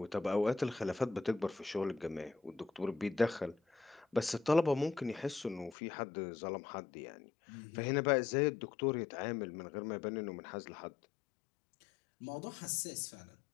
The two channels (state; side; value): drops out; right; at 5.8 s